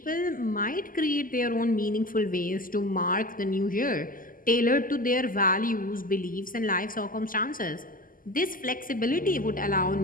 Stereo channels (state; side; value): late; right; 0.41 ms